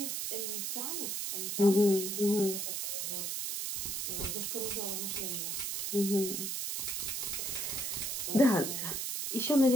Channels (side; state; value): right; noise; hiss, 2 dB below the sound